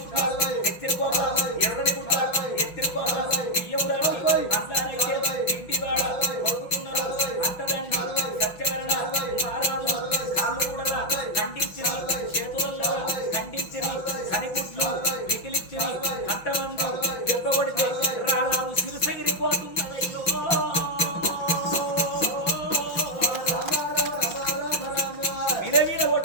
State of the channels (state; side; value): late; right; 5.9 ms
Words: ఎర్రని గుట్ట ఎత్తిరి కోట బియ్యం రాని మందానైతే కనిగుడ్లు మిగిలిచ్చి కంటమందు దెబ్బ కొడితే రారాదు సిరిసగిరిపోతున్నదయ్యో